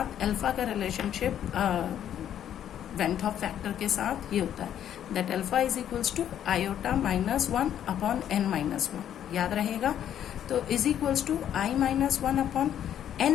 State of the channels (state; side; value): quieter; right; 10.3 dB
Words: अल्फा का रिलेशनशिप वैन हॉफ फैक्टर के साथ ये होता है, that alpha is equals to iota -1 upon n-1, याद रहेगा। तो is equals to i-1 upon